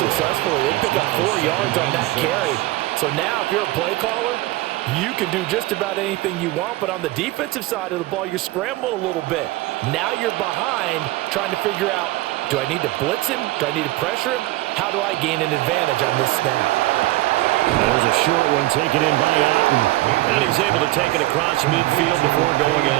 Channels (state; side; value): quieter; left; 18.6 dB